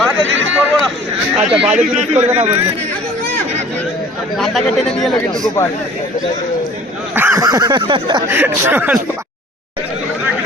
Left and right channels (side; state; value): both; normal; correlation 0.49